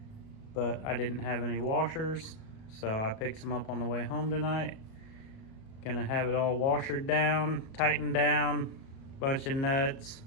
but I didn't have any washers, so I picked some up on the way home tonight. Gonna have it all washered down, tightened down, bunch of nuts,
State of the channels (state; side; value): late; right; 37 ms